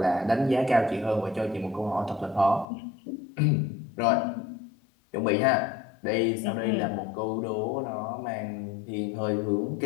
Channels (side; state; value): right; drops out; at 2.7 s